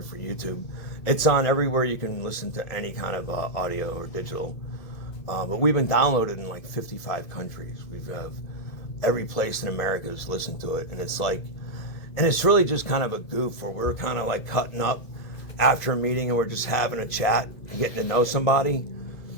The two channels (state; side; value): late; right; 2.2 ms